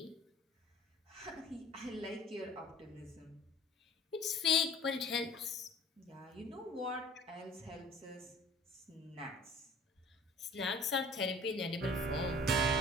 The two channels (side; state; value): both; normal; correlation 0.48